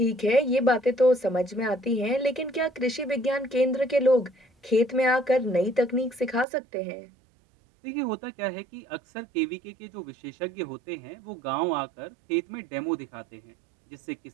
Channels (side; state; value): left; drops out; at 6.5 s